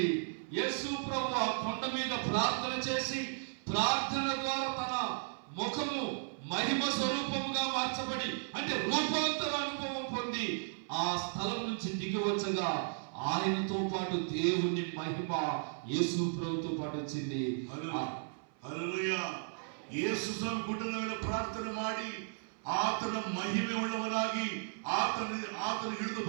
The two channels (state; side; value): silent; left; 54 dB below the other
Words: యేసు ప్రభు ఆ కొండ మీద ప్రార్థన చేసి ప్రార్థన ద్వారా తన ముఖము మహిమ స్వరూపముగా మార్చబడి అంటే రూపాంతర అనుభవం పొంది ఆ స్థలం నుంచి దిగి వచ్చగా ఆయనతో పాటు దేవుని మహిమ యేసు ప్రభుతో పాటు వచ్చింది. హల్లెలూయా. యేసు స్వామి గుడ్డల మీద ప్రార్థన ಮಾಡಿ ಆತನ ಮಹಿಮೆ ಉಳ್ಳವನಾಗಿ ಆತನ ಹಿಡಿದು